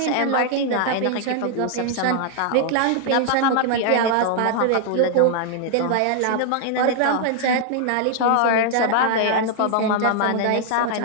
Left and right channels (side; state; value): both; different; correlation 0.00